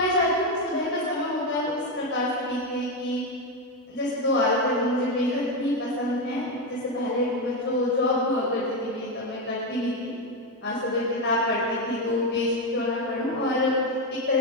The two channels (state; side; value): normal; both; correlation 0.09